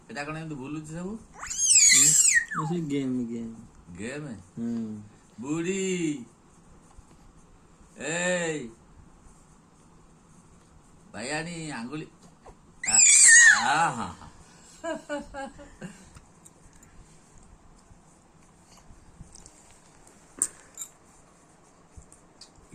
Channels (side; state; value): both; identical; correlation 1.00